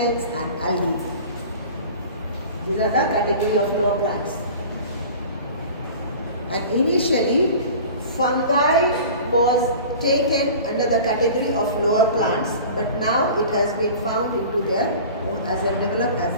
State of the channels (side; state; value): both; inverted; correlation -0.40